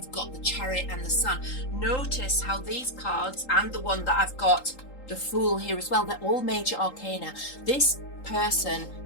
got the Chariot and the Sun. Notice how these cards, and the one that I've got, the Fool, here as well, they're all major arcana. This person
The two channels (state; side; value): late; right; 3.8 ms